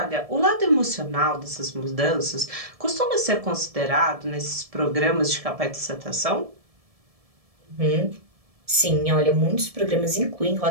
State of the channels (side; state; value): left; late; 1.7 ms